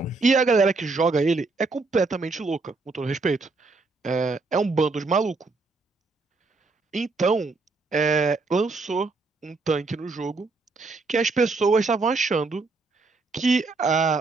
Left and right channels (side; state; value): left; quieter; 3.8 dB